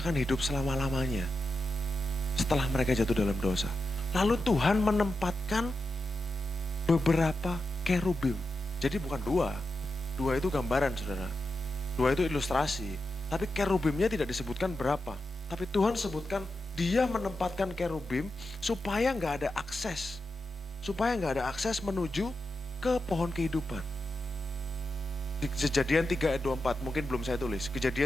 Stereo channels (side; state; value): both; normal; correlation 0.89